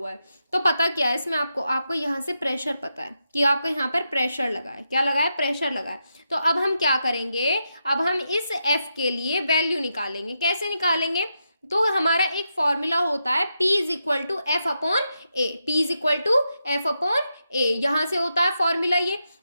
है, तो पता क्या है इसमें, आपको यहाँ से प्रेशर पता है कि आपको यहाँ पर प्रेशर लगा है, क्या लगा है, प्रेशर लगा है। तो अब हम क्या करेंगे, अब हम इस एफ के लिए वैल्यू निकालेंगे। कैसे निकालेंगे, तो हमारा एक फॉर्मूला होता है P is equal to F upon A, P is equal to F upon A, यहाँ से होता है फॉर्मूला ये।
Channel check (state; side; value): inverted; both; correlation -0.85